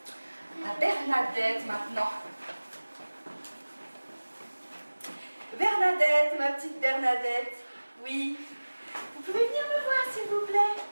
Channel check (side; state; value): both; inverted; correlation -1.00